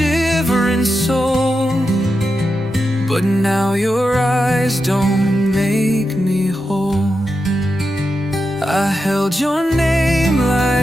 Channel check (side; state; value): both; normal; correlation 0.88